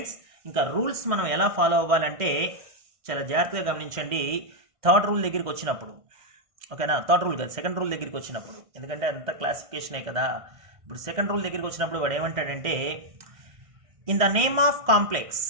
ఇంకా రూల్స్ మనం ఎలా ఫాలో అవ్వాలంటే చాలా జాగ్రత్తగా గమనించండి. థర్డ్ రూల్ దగ్గరికి వచ్చినప్పుడు, ఓకేనా? థర్డ్ రూల్ కాదు, సెకండ్ రూల్ దగ్గరికి వచ్చినప్పుడు, ఎందుకంటే అంత క్లాసిఫికేషనే కదా. ఇప్పుడు సెకండ్ రూల్ దగ్గరికి వచ్చినప్పుడు వాడు ఏమంటాడంటే, in the name of complex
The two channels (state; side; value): late; left; 1.6 ms